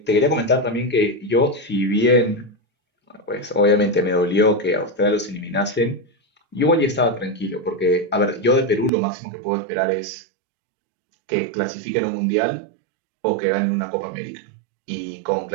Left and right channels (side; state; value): left; drops out; at 8.9 s